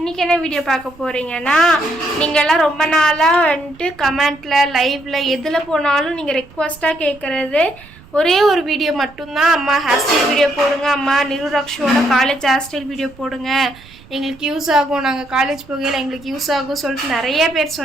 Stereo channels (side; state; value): right; noise; rumble, 23 dB below the sound